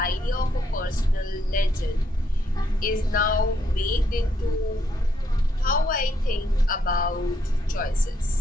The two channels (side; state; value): both; normal; correlation 0.75